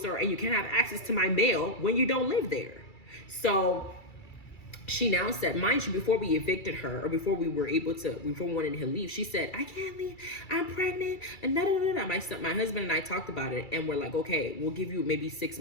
you can't have access to my mail when you don't live there. So she now said, mind you, before we evicted her, or before we wanted her to leave, she said, I can't leave, I'm pregnant, and My husband and I talked about it, and we're like, okay, we'll give you maybe 6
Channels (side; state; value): right; late; 2.3 ms